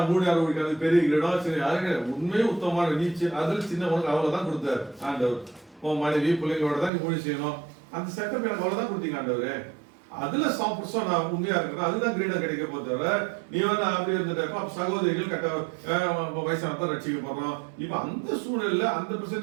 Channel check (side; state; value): left; drops out; at 6.9 s